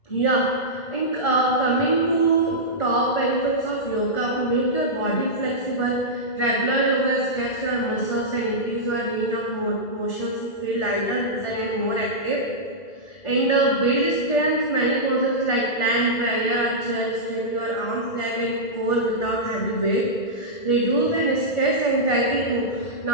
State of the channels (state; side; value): late; right; 1.4 ms